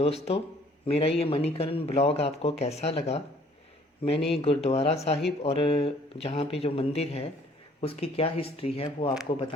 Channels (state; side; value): normal; both; correlation 0.58